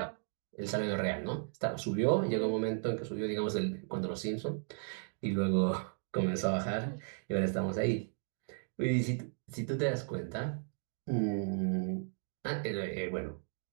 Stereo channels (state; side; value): silent; left; 54 dB below the other